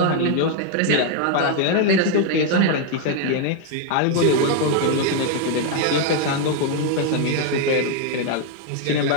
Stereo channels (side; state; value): both; different; correlation 0.01